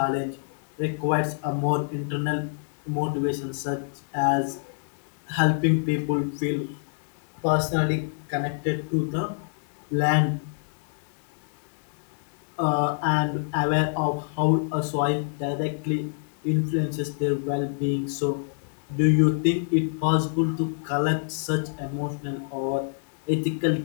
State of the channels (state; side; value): silent; right; digital silence